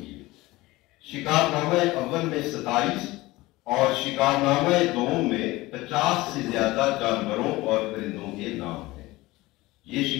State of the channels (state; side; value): quieter; right; 19.8 dB